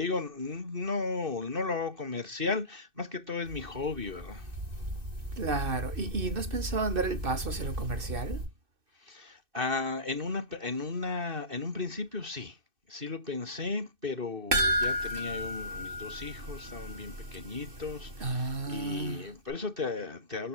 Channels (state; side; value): late; left; 2.6 ms